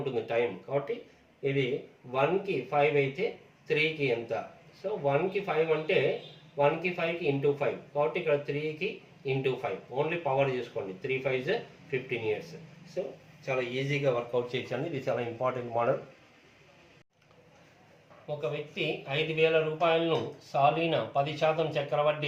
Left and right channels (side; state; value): both; identical; correlation 1.00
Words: టైం. కాబట్టి ఇది 1కి 5 అయితే 3కి ఎంత? సో 1కి 5 అంటే 1కి 5కి × 5 కాబట్టి ఇక్కడ 3కి × 5 ఓన్లీ పవర్ చూసుకోండి. 3 5s 15 years. సో చాలా ఈజీగా వర్కౌట్ చేయొచ్చండి. ఇది చాలా ఇంపార్టెంట్ మోడల్. ఒక వ్యక్తి 5,000 రూపాయలను సాలీన 10%